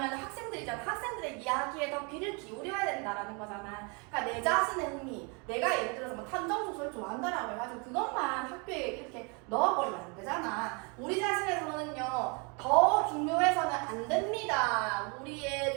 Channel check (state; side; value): quieter; left; 32.7 dB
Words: 학생들이잖아. 학생들의 이야기에 더 귀를 기울여야 된다라는 거잖아. 그러니까 내 자신의 흥미, 내가 예를 들어서 뭐 탐정 소설 좋아한다라고 해가지고 그것만 학교에 이렇게 넣어버리면 안 되잖아. 우리 자신의 선호는요 더 중요해서는 안 됩니다.